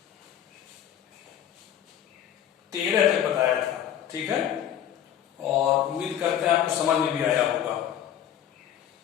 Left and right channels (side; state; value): right; quieter; 10.3 dB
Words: तेरह तक बताया था, ठीक है, और उम्मीद करते हैं आपको समझ में भी आया होगा।